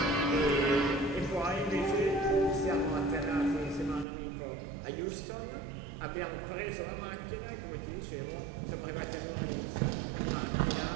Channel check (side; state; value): left; drops out; at 4.0 s